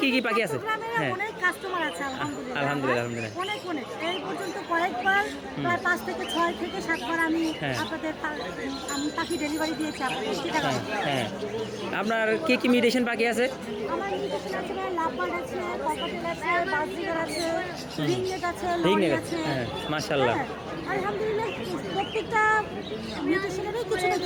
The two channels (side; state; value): both; identical; correlation 1.00